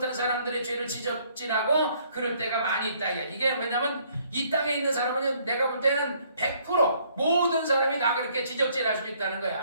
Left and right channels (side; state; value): both; inverted; correlation -0.65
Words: 사람들의 죄를 지적질하고 그럴 때가 많이 있다. 이게 왜냐면 이 땅에 있는 사람은 내가 볼 때는 100% 모든 사람이 다 그렇게 지적질할 수 있다는